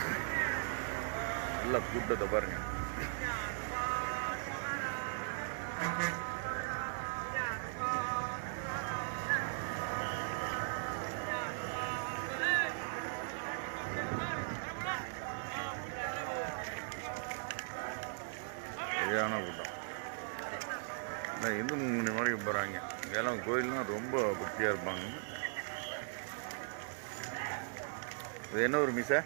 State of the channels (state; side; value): silent; left; digital silence